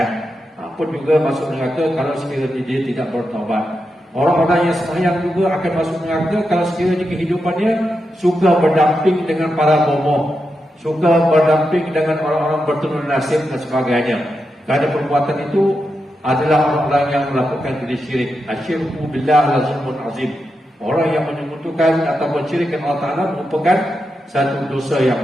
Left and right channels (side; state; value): both; normal; correlation 0.87